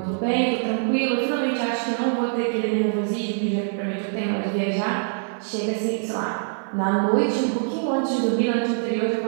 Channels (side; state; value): left; silent; 55 dB below the other